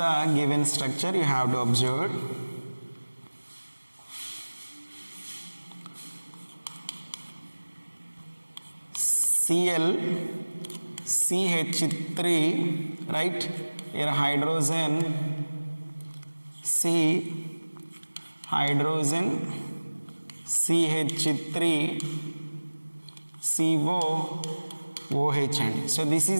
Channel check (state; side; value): inverted; both; correlation -1.00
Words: the given structure you have to observe. Cl CH3, right? Here hydrogen C, hydrogen CH3 CO OH అండి. So this